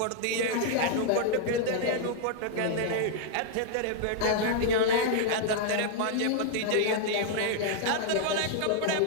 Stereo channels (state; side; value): different; both; correlation 0.00